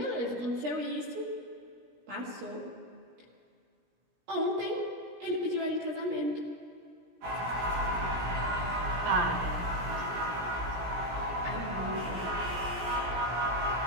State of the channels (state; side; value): late; left; 17 ms